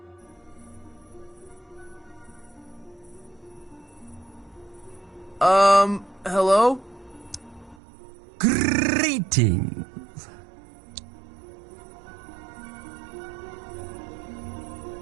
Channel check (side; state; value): left; drops out; at 7.8 s